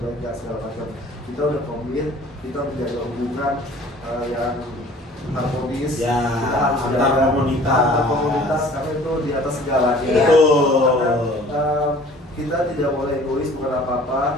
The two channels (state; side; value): normal; both; correlation 0.50